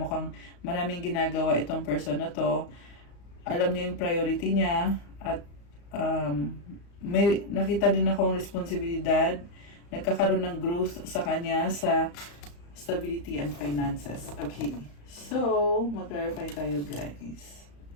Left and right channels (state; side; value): late; right; 35 ms